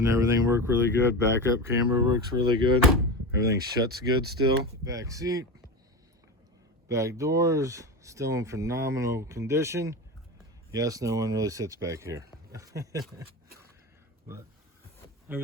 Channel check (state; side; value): normal; both; correlation 0.23